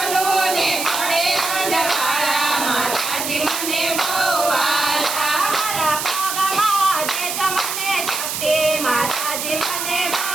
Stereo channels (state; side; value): noise; right; hiss, 3 dB below the sound